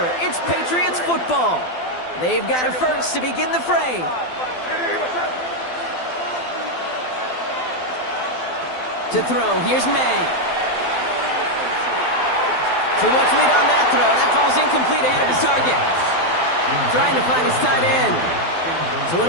It's Patriots football. They've got a first to begin the fray. To throw, here's May. Too much lead on that throw. That falls incomplete ahead of his target. Trying to find his tight end. So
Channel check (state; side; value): late; right; 12 ms